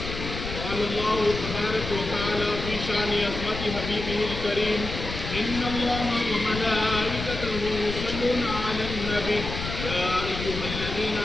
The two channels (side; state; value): left; noise; rumble, 6 dB below the sound